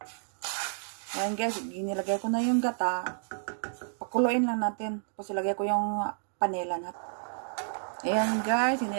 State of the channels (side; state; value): left; silent; digital silence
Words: Ayan guys, ginilagay ko na yung gata. Pakuluin lang natin. Tapos ilagay ko yung panela natin. Ayan guys,